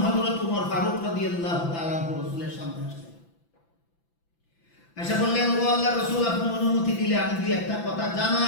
হযরত ওমর ফারুক রাদিয়াল্লাহু তাআলা রাসূলের সামনে আসলেন, এসে বললেন, ও আল্লাহর রাসূল, আপনি অনুমতি দিলে আমি দুই একটা কথা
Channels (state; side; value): late; right; 5.9 ms